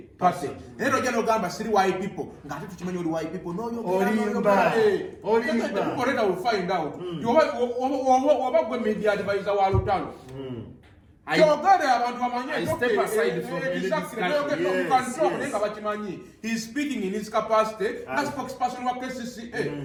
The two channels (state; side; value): identical; both; correlation 1.00